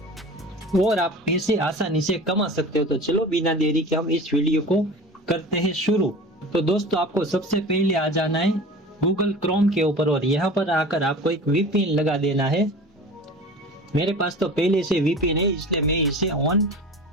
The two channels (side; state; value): both; normal; correlation 0.37